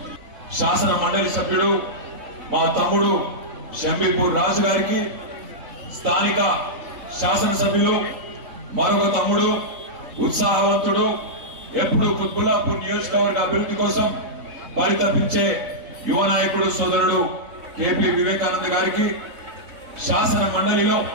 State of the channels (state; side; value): late; left; 4.0 ms